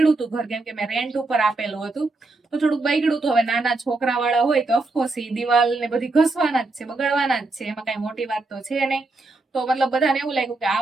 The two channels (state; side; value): quieter; left; 3.3 dB